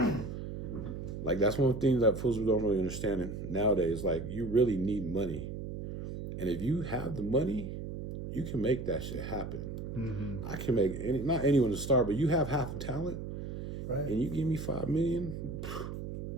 Like that's one thing that fools don't really understand nowadays. Like you really need money. And if you have the money, you can make that shit happen. Mm-hmm. I can make not anyone to start, but you have half the talent. Right. And you give me $5 million,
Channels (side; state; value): right; noise; hum, 6 dB below the sound